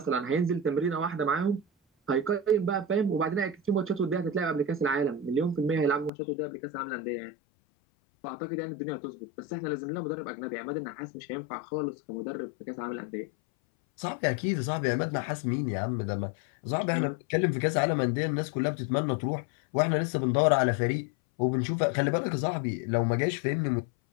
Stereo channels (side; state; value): right; drops out; at 6.1 s